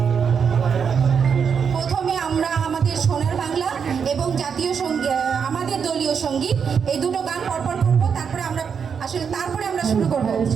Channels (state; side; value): quieter; left; 6.7 dB